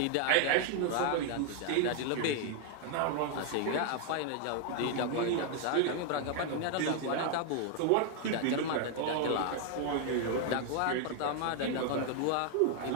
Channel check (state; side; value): different; both; correlation 0.00